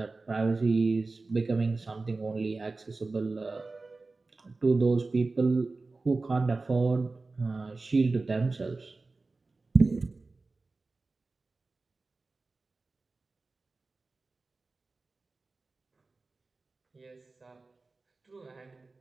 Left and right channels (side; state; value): left; quieter; 3.6 dB